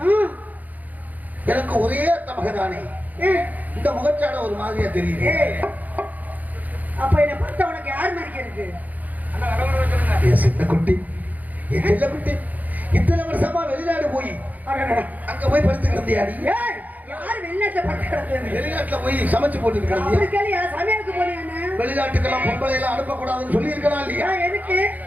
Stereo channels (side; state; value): left; late; 0.080 ms